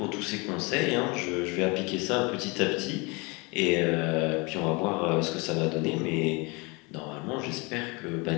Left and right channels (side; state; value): right; quieter; 27.8 dB